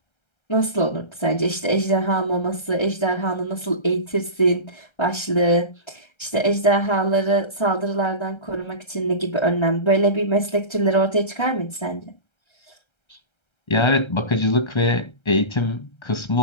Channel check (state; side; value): late; right; 1.3 ms